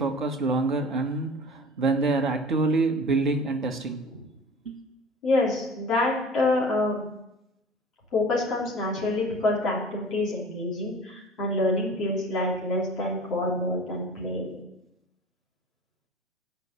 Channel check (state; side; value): normal; both; correlation 0.42